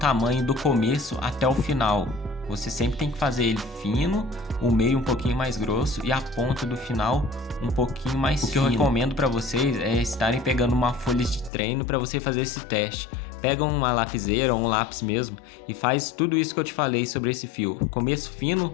do começo até o final. Você sempre tem que fazer ele fino, o meio um pouquinho mais grosso e a ponta do final um pouquinho mais fino. O que eu recomendo para vocês é estarem pegando uma folha de treino para você fazer esse teste. Pega uma lapiseira ou um lápis mesmo e faz tudo isso que eu te falei sobre esse fio. Começo fino,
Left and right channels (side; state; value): right; drops out; at 11.5 s